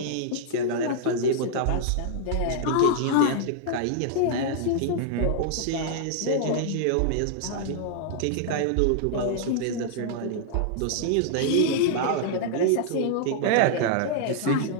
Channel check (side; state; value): both; different; correlation -0.01